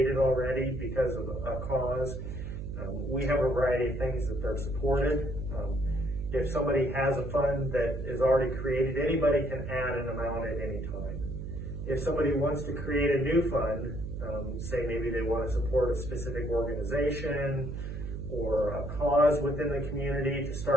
already because of a cause, we have a variety of things that they're supported. If somebody has a fund that is already created, anybody can add an amount at any time. If somebody wants to create a new fund, say maybe they want to support a specific organization or a cause within the community to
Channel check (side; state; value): right; noise; hum, 6 dB below the sound